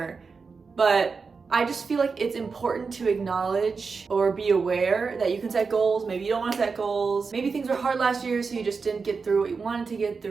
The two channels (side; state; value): left; quieter; 4.9 dB